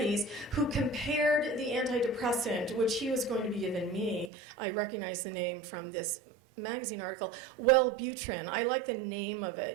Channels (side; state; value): left; drops out; at 4.3 s